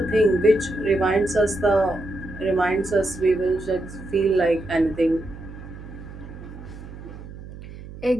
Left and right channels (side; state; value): right; noise; hum, 14 dB below the sound